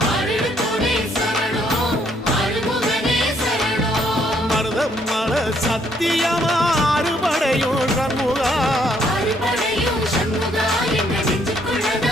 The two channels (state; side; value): normal; both; correlation 0.68